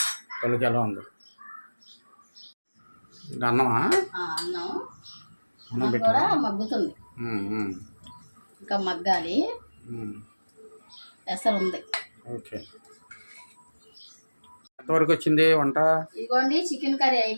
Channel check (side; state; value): both; inverted; correlation -1.00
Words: పలుకి ఎలా ఉంది అన్నమా? అన్నం కూడా మగ్గుతుంది, ఇంకా మగ్గాలి. ఎసరు ఉంది. ఓకే. ఎంతవరకు వచ్చింది వంట? ఇదిగోండి, చికెన్ కర్రీ